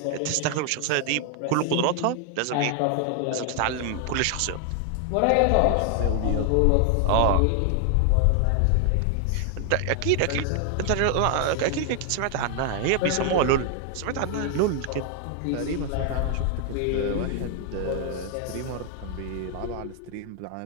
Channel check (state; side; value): different; both; correlation 0.00